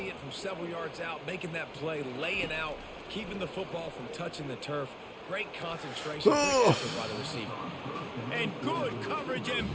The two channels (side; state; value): both; identical; correlation 1.00